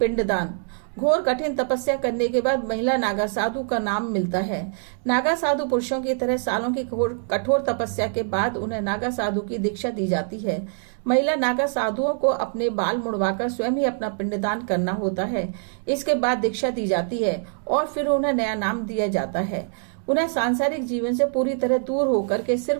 घोर कठिन तपस्या करने के बाद महिला नागा साधु का नाम मिलता है। नागा साधु पुरुषों की तरह सालों की कठोर तपस्या के बाद उन्हें नागा साधु की दीक्षा दी जाती है। महिला नागा साधुओं को अपने बाल मुड़वाकर स्वयं ही अपना पिंडदान करना होता है। इसके बाद दीक्षा दी जाती है और फिर उन्हें नया नाम दिया जाता है। उन्हें सांसारिक जीवन से पूरी तरह दूर होकर के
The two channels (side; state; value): left; silent; 63 dB below the other